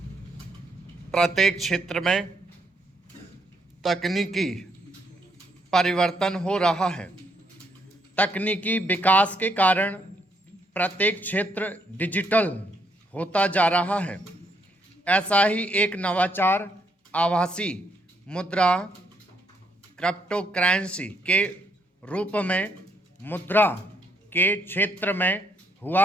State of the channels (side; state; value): both; normal; correlation 0.73